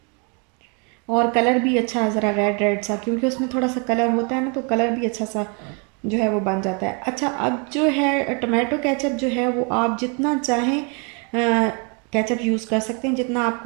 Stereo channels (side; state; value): left; quieter; 35.2 dB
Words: और कलर भी अच्छा ज़रा रेड रेड सा, क्योंकि उसमें थोड़ा सा कलर होता है ना, तो कलर भी अच्छा सा जो है वो बन जाता है। अच्छा अब जो है टमाटो केचप जो है वो आप जितना चाहें केचप यूज़ कर सकते हैं, जितना